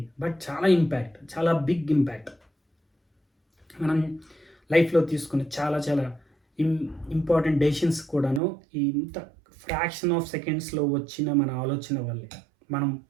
బట్ చాలా ఇంపాక్ట్, చాలా బిగ్ ఇంపాక్ట్. మనం లైఫ్లో తీసుకునే చాలా చాలా ఇంపార్టెంట్ డెసిషన్స్ కూడాను ఇంత ఫ్రాక్షన్ ఆఫ్ సెకండ్స్లో వచ్చిన మన ఆలోచన వల్లే. మనం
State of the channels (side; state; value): left; drops out; at 8.4 s